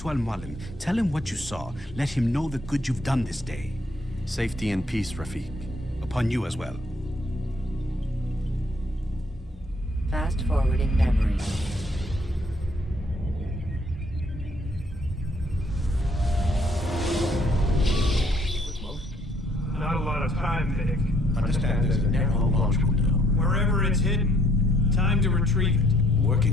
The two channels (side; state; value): both; normal; correlation 0.66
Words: Al-Mualim. Tell him what you saw. Let him know the good you've done this day. Safety and peace, Rafiq. Upon you as well. Fast forwarding memory. Not a lot of time, Vic. Understand there's a narrow launch window. Wherever it's hidden, time to retrieve it.